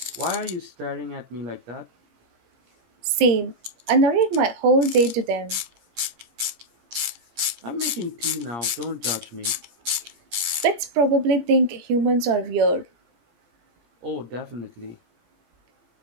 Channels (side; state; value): left; late; 17 ms